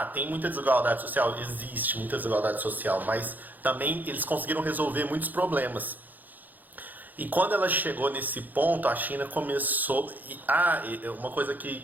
tem muita desigualdade social, existe muita desigualdade social, mas também eles conseguiram resolver muitos problemas. E quando ela chegou nesse ponto, a China começou... uma coisa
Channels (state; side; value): late; left; 0.084 ms